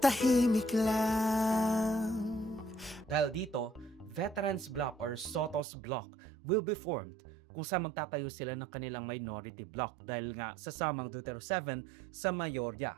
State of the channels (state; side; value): drops out; left; at 5.6 s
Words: lang. Dahil dito, Veterans Bloc or Soto's Bloc will be formed kung saan magtatayo sila ng kanilang minority bloc dahil nga sasamang Duterte 7 sa